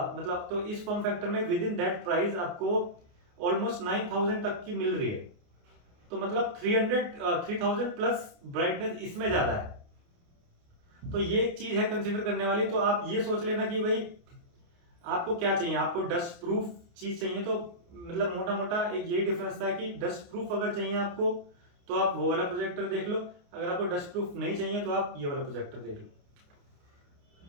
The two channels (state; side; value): late; left; 29 ms